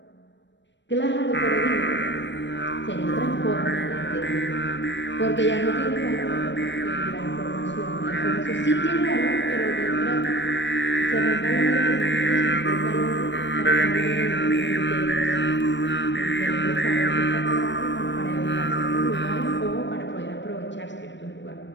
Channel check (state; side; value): late; right; 0.53 ms